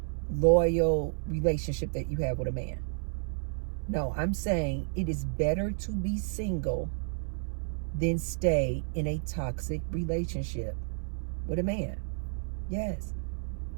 loyal relationship that you have with a man. No, I'm saying it is better to be single than stay in a toxic relationship with a man. Yes,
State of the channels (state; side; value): silent; left; 57 dB below the other